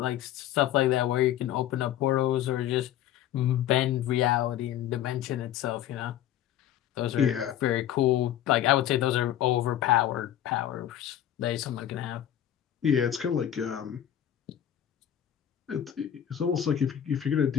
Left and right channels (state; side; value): quieter; right; 11.2 dB